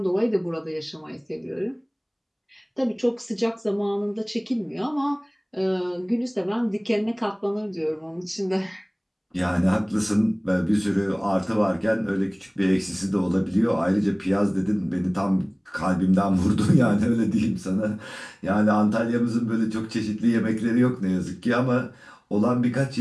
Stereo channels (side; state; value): both; identical; correlation 1.00